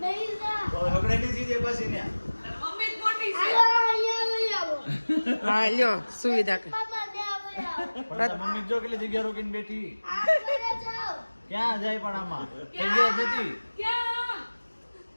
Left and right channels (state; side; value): inverted; both; correlation -1.00